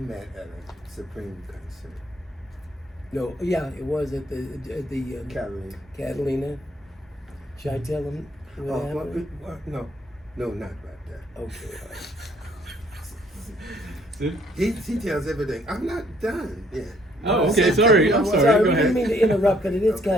at a Supreme concert. No, yeah, it was at the Catalina. Catalina. Should I tell him what happened? No, not about that. Okay, all right. Sid? He tells everything. I'm not done yet. Oh, okay. Sorry. I'm sorry. Go We didn't ahead. mean to interrupt, but it is Okay.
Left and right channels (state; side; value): normal; both; correlation 0.64